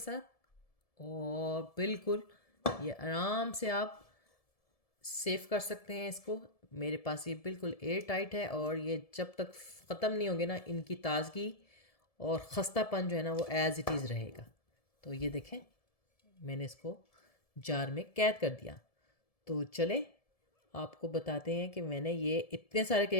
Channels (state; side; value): late; right; 1.7 ms